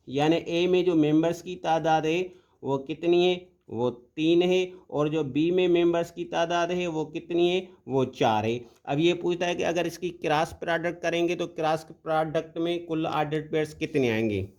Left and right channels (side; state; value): both; identical; correlation 1.00